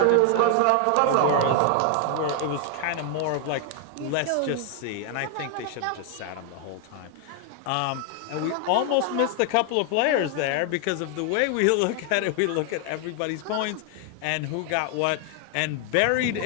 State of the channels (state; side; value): different; both; correlation 0.00